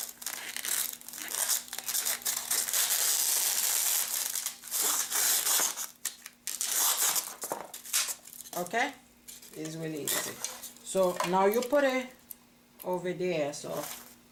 Okay, it's really easy. So now you put it over there. So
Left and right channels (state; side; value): identical; both; correlation 1.00